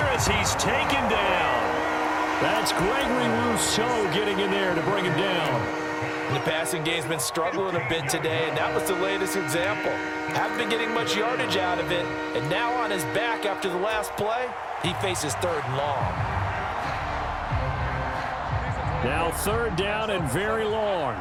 as he's taken down. That's Gregory Rousseau getting in there to bring him down. The passing game's been struggling a bit today, and that was the latest example. Haven't been getting much yardage out of it, and now on his back after the last play, he faces 3rd and long. Now 3rd down and very long.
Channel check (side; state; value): both; identical; correlation 1.00